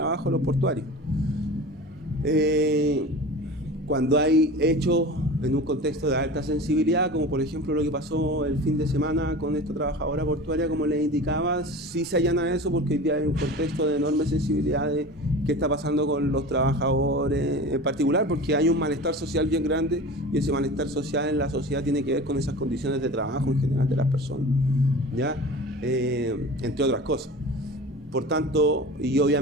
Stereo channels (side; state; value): both; normal; correlation 0.35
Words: de los portuarios. Cuando hay hechos en un contexto de alta sensibilidad, como por ejemplo lo que pasó el fin de semana con esta trabajadora portuaria, como les indicaba, sí se allana eso porque hoy día hay un contexto de enorme sensibilidad de qué está pasando con los trabajadores en particular, porque hay un malestar social bien grande y ese malestar social en la sociedad tiene que ver con esas condiciones de trabajo en general de las personas, ¿ya? Entre otras cosas. Por tanto, y